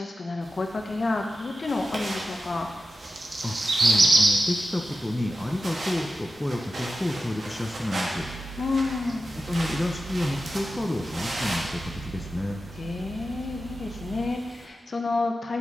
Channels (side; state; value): both; normal; correlation 0.92